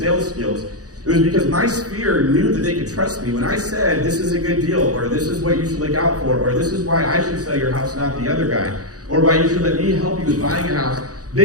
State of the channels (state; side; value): late; left; 0.67 ms